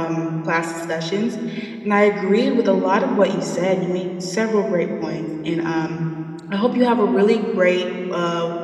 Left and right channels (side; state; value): both; identical; correlation 1.00